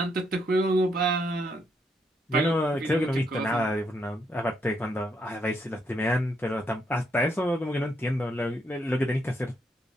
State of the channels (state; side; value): normal; both; correlation 0.76